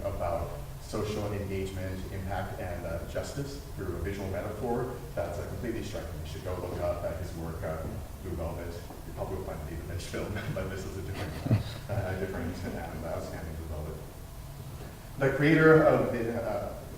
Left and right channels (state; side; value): identical; both; correlation 1.00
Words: about social engagement, impact, and justice through a visual metaphor, that's completely striking. You should go look up at his work, Blue Velvet. You probably will find the David Lynch film, but this is a different and outstanding Blue Velvet. The creator of the,